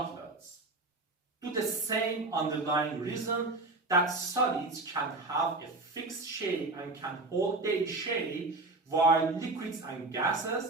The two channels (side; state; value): left; quieter; 3.2 dB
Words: to the same underlying reason that solids can have a fixed shape and can hold their shape, while liquids and